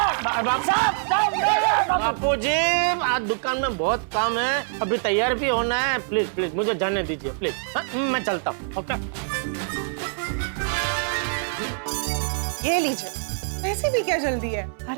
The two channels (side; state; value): left; silent; 59 dB below the other